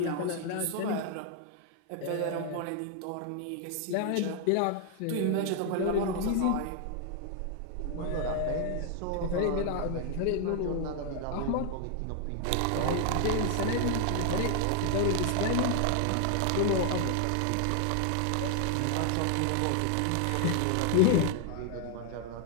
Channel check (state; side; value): different; both; correlation 0.00